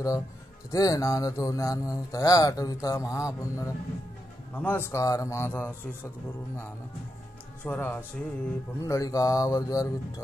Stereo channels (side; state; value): both; normal; correlation 0.85